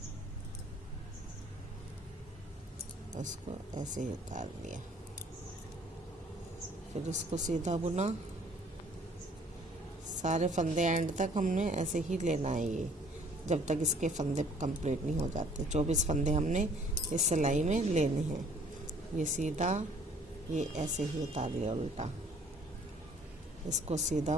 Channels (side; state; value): both; normal; correlation 0.57